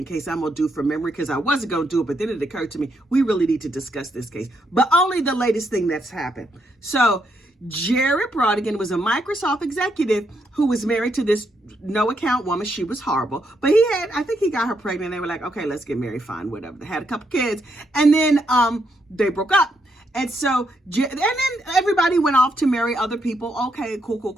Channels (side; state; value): both; normal; correlation 0.78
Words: case I'm going to do from memory because I wasn't going to do it, but then it occurred to me, we really need to discuss this case, but only the latest thing that's happened. So Jared Bridegan was a Microsoft executive who was married to this no-account woman. She was horrible, but I think he got her pregnant. They were like, okay, let's get married, fine, whatever. They had a couple kids, and then they broke up. And so, and then everybody went off to marry other people. Okay,